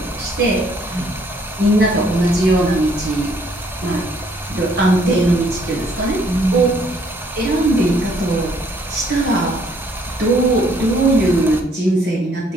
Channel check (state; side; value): normal; both; correlation 0.64